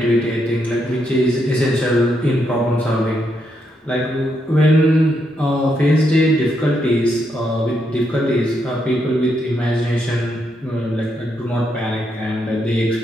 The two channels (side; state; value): both; normal; correlation 0.79